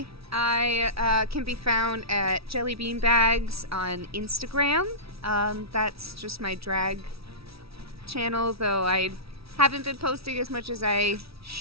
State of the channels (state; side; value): late; left; 0.76 ms